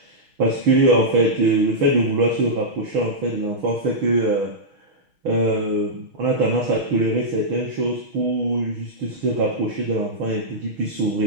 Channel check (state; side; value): late; left; 6.3 ms